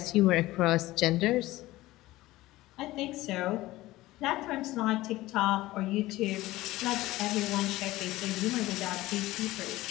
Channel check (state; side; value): quieter; right; 17.7 dB